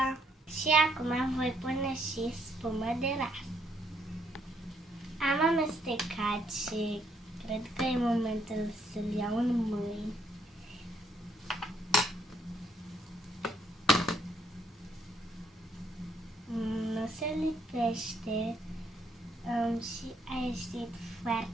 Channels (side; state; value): both; normal; correlation 0.71